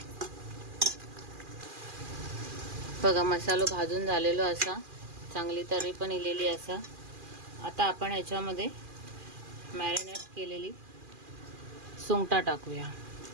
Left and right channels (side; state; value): left; late; 2.4 ms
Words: बघा, मसालो भाजून झालेलो असा, चांगली तरी पण इलेली असा. आता आपण ह्याच्यामध्ये मॅरिनेट केलेली सुंगटा टाकूया,